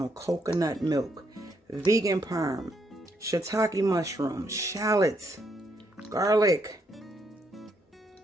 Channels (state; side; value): normal; both; correlation 0.75